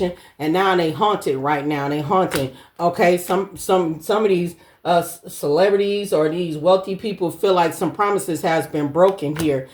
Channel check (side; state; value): both; identical; correlation 1.00